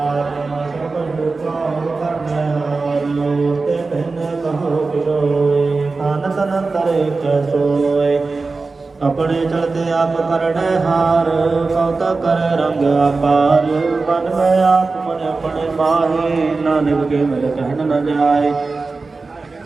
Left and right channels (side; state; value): left; quieter; 3.9 dB